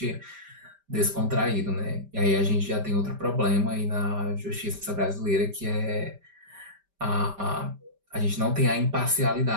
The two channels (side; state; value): left; late; 5.1 ms